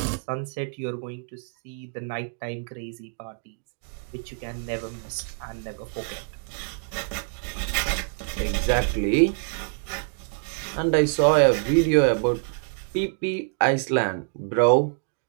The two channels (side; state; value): left; silent; 60 dB below the other